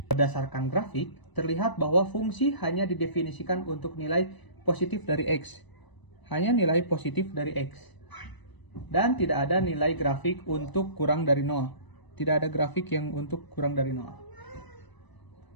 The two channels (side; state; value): right; late; 1.0 ms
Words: Berdasarkan grafik, terlihat bahwa fungsi hanya didefinisikan untuk nilai positif dari x. Hanya nilai positif dari x. Dan tidak ada nilai grafik untuk kurang dari 0. tidak ada grafik yang untuk kurang dari 0.